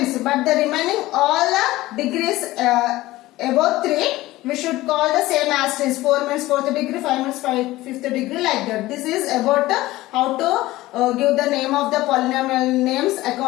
but the remaining all the degrees above 3 we should call the same as is. 4 means 4th degree, 5 means 5th degree, like that. This is about how to give the name of the polynomial names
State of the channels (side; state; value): right; quieter; 17.6 dB